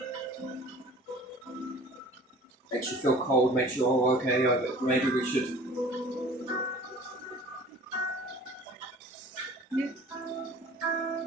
Makes you feel cold, makes you, oh, okay, maybe we should. Yeah.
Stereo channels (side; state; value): both; normal; correlation 0.46